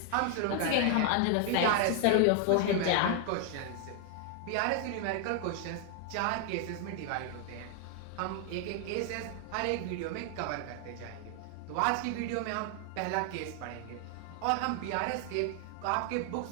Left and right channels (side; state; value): both; different; correlation 0.00